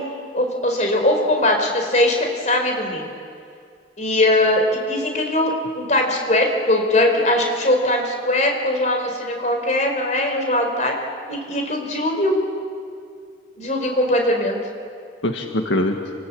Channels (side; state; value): both; normal; correlation 0.18